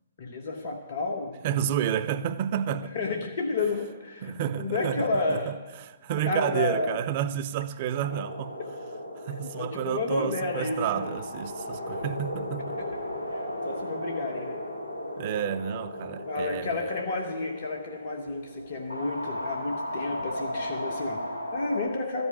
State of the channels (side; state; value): both; inverted; correlation -0.52